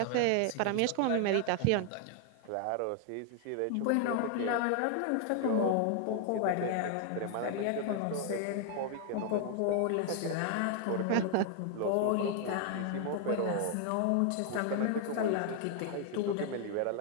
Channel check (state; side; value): different; both; correlation 0.00